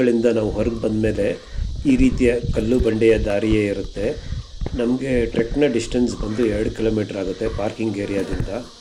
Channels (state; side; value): identical; both; correlation 1.00